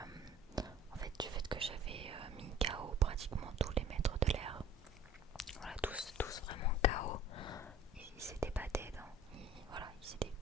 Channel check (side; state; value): both; normal; correlation 0.49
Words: en fait du fait que j'avais mis KO pratiquement tous les maîtres de l'air. Voilà, tous vraiment KO. Ils s'étaient pas dead, ils étaient